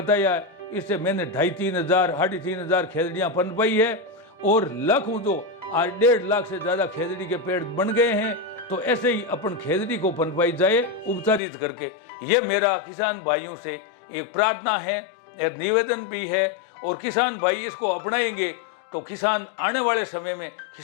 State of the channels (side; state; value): right; drops out; at 11.4 s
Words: है इससे मैंने 2,500-3,000 3,500 खेजड़ियाँ पनपाई है और लाखों जो आज 1.5 लाख से ज़्यादा खेजड़ी के पेड़ बन गए हैं। तो ऐसे ही अपन खेजड़ी को पनपाई जाए उपचारित करके। ये मेरा किसान भाइयों से एक प्रार्थना है, एक निवेदन भी है, और किसान भाई इसको अपनाएंगे तो किसान आने वाले समय में